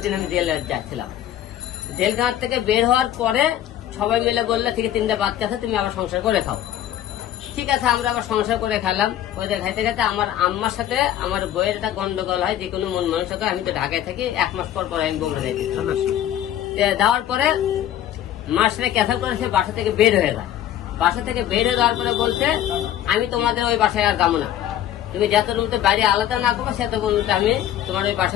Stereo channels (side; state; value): right; quieter; 11.7 dB